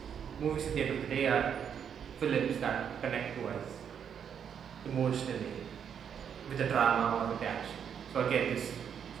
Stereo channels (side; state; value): left; quieter; 8.0 dB